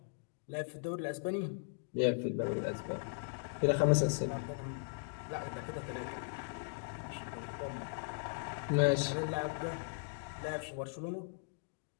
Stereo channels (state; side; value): silent; right; digital silence